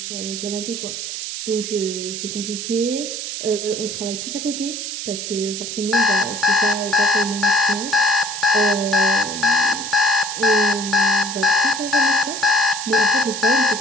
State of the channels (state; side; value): noise; right; hiss, 6 dB below the sound